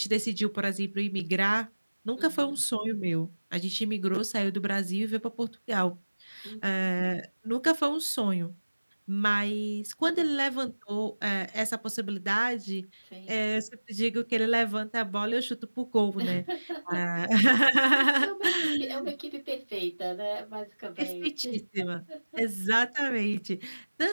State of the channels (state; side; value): inverted; both; correlation -1.00